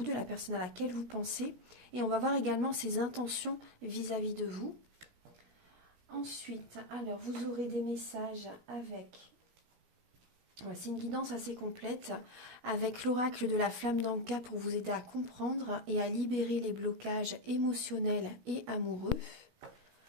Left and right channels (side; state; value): left; late; 16 ms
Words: de la personne à laquelle vous pensez. Et on va voir également ses intentions vis-à-vis de vous. Ensuite, alors vous aurez des messages avec... C'est une guidance assez complète avec l'oracle de la flamme d'Anka pour vous aider à comprendre et à libérer les blocages émotionnels et amoureux.